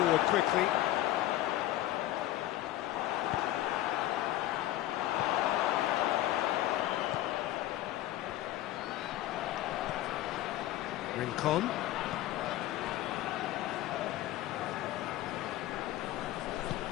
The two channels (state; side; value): quieter; right; 14.7 dB